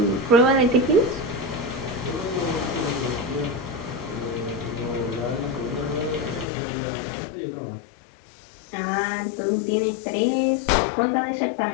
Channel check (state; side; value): drops out; right; at 6.5 s